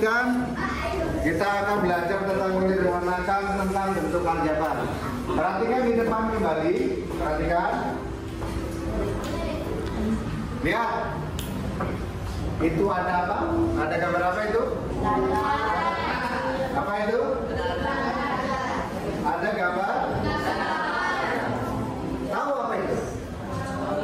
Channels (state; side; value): identical; both; correlation 1.00